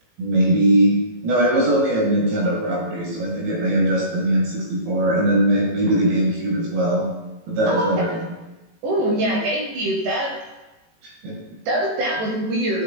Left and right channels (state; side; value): late; left; 18 ms